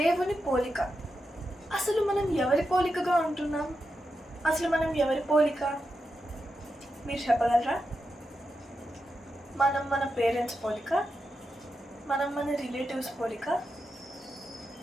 పోలిక. అసలు మనం ఎవరి పోలికగా ఉంటున్నాం? అసలు మనం ఎవరి పోలిక? మీరు చెప్పగలరా? మనం మన పేరెంట్స్ పోలిక? మనం మన రిలేటివ్స్ పోలిక?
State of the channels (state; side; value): normal; both; correlation 0.88